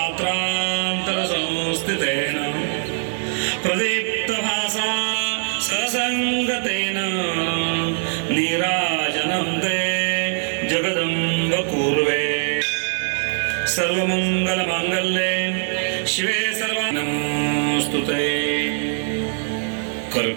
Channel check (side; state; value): left; silent; 64 dB below the other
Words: प्रदीप्तभासा ससङ्गतेन नीराजनं ते जगदम्ब कुर्वे सर्वमङ्गलमाङ्गल्ये शिवे सर्वानमोऽस्तुते।